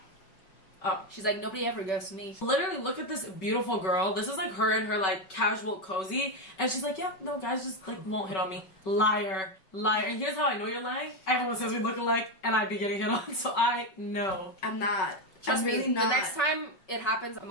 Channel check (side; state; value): right; late; 5.2 ms